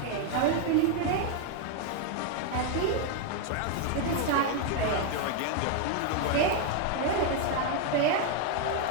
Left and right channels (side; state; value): both; different; correlation 0.00